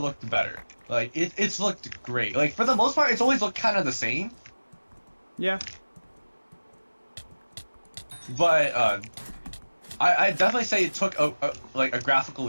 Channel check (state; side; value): inverted; both; correlation -1.00